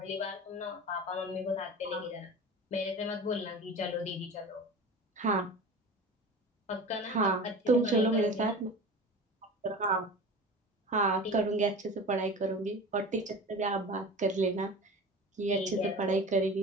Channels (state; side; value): normal; both; correlation 0.34